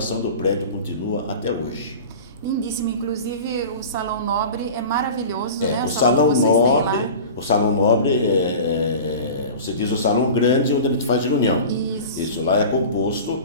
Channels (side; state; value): both; inverted; correlation -0.35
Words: do prédio continua até hoje. Lindíssimo, inclusive o Salão Nobre é maravilhoso, né? O Salão Nobre você diz o salão grande onde a gente faz reunião. Isso lá é